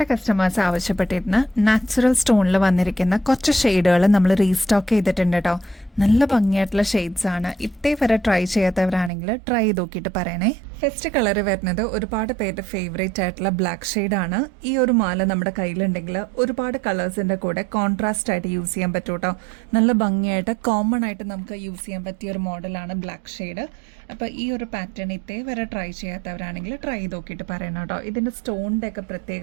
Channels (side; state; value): left; drops out; at 9.1 s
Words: കസ്റ്റമേഴ്സ് ആവശ്യപ്പെട്ടിരുന്ന നാച്ചുറൽ സ്റ്റോണിൽ വന്നിരിക്കുന്ന കുറച്ച് ഷെയ്ഡുകൾ നമ്മൾ റീസ്റ്റോക്ക് ചെയ്തിട്ടുണ്ട് കേട്ടോ. നല്ല ഭംഗിയായിട്ടുള്ള ഷെയ്ഡ്സ് ആണ്. ഇതേവരെ ട്രൈ ചെയ്യാത്തവരാണെങ്കിൽ ട്രൈ ചെയ്ത് നോക്കിയിട്ട് പറയണേ. ഫസ്റ്റ് കളർ വരുന്നത് ഒരുപാട് പേരുടെ ഫേവറേറ്റ് ആയിട്ടുള്ള ബ്ലാക്ക് ഷെയ്ഡാണ്. ഈ ഒരു മാല നമ്മുടെ കയ്യിലുണ്ടെങ്കിൽ ഒരുപാട് കളേഴ്സിൻ്റെ കൂടെ കോൺട്രാസ്റ്റ് ആയിട്ട് യൂസ് ചെയ്യാൻ പറ്റും കേട്ടോ. നല്ല ഭംഗിയായിട്ട് കോമൺ ആയിട്ട് നമുക്ക് യൂസ് ചെയ്യാൻ പറ്റിയ ഒരു മോഡലാണ് ബ്ലാക്ക് ഷെയ്ഡ്. അപ്പോൾ ഈ ഒരു പാറ്റേൺ ഇതേവരെ ട്രൈ ചെയ്യാത്തവരാണെങ്കിൽ ട്രൈ ചെയ്ത് നോക്കിയിട്ട് പറയണം കേട്ടോ. ഇതിൻ്റെ സ്റ്റോണിൻ്റെ ഒക്കെ